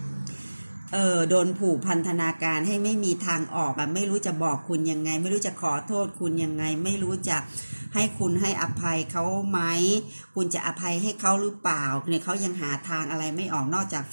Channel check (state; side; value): inverted; both; correlation -1.00